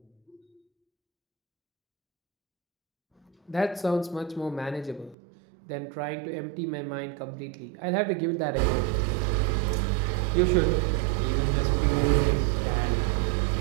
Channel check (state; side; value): drops out; left; at 5.2 s